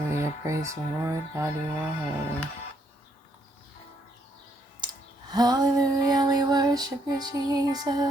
Praise the Lord. God, you are holy. Hallelujah. We worship you,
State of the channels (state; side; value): normal; both; correlation 0.72